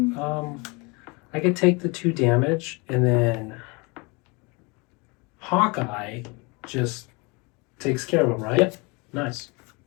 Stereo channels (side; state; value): right; quieter; 28.5 dB